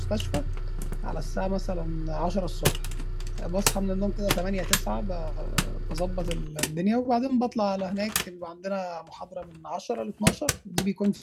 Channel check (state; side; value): identical; both; correlation 1.00